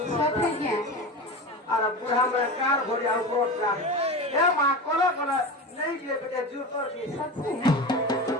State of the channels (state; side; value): normal; both; correlation 0.26